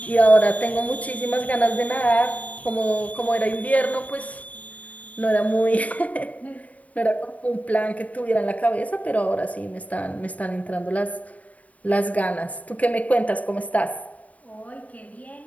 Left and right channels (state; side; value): late; right; 0.070 ms